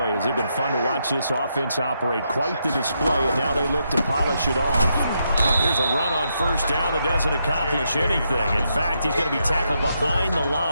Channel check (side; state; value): both; inverted; correlation -0.80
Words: has it been fun to watch this offense operate. Quite the display, and now they look to polish it off. Here's a run on first down that doesn't accomplish anything. In fact, he's going to be tackled behind the